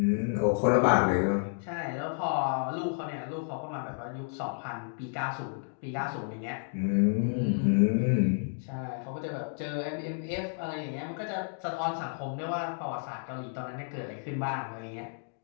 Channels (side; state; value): right; silent; digital silence